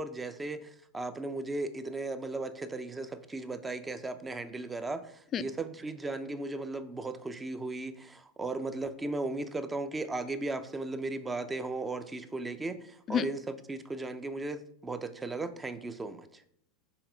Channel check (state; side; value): normal; both; correlation 0.72